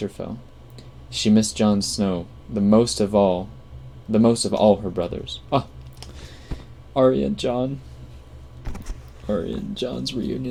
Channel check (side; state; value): both; identical; correlation 1.00